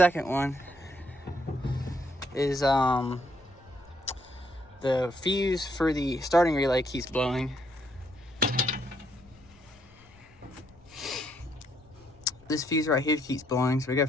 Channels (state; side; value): noise; left; rumble, 26 dB below the sound